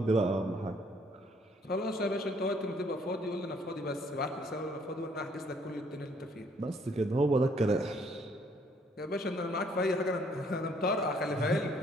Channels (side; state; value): both; normal; correlation 0.64